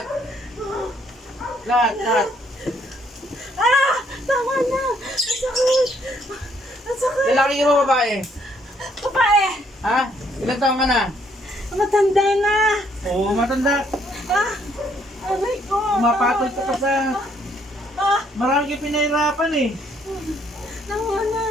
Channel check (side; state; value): both; normal; correlation 0.68